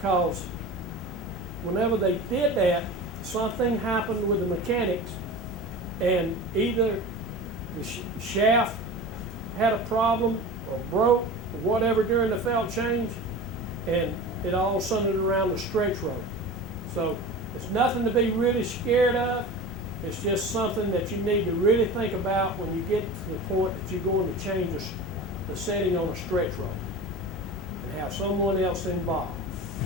whenever they did that, something happened with the mechanics, and either the shaft had a problem or broke or whatever during the felt change, and it all centered around the stretch roll. So it's nothing to be really scared of. It's just something that you need to really think about when you get to the point that you're going to change the setting on a stretch roll and have someone else involved.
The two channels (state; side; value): normal; both; correlation 0.33